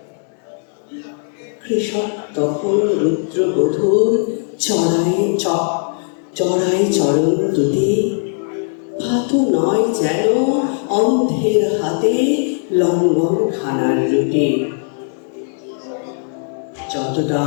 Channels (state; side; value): silent; right; 63 dB below the other